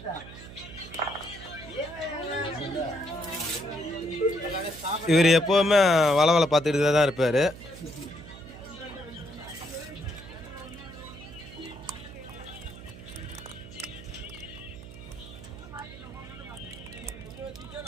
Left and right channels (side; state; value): right; noise; hum, 15 dB below the sound